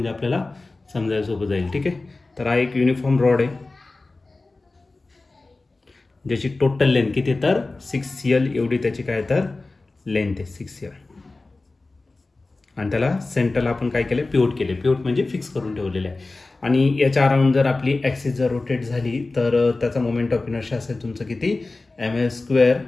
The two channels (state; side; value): quieter; right; 3.4 dB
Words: आपल्याला समजायला सोपं जाईल. ठीक आहे, तर हा एक युनिफॉर्म रॉड आहे, ज्याची टोटल लेंथ किती तर 6L एवढी त्याची काय तर लेंथ आहे 6L. आणि त्याला सेंटरला आपण काय केलं, पिवट केले. पिवट म्हणजे फिक्स करून ठेवलेले आहे. आणि याच्या अराउंड जर आपली ॲक्सिस जर रोटेट झाली तर त्याचा मोमेंट ऑफ इनर्शिया असेल तुमचं किती ml²